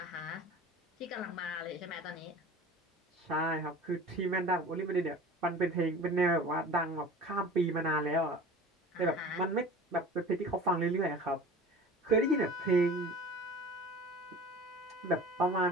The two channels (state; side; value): normal; both; correlation 0.40